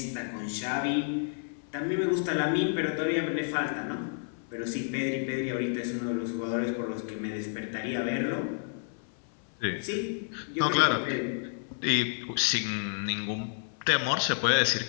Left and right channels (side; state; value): right; silent; 58 dB below the other